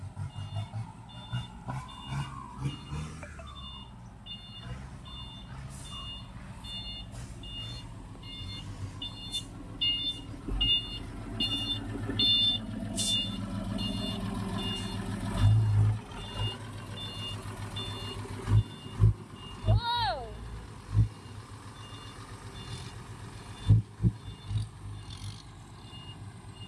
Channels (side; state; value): both; identical; correlation 1.00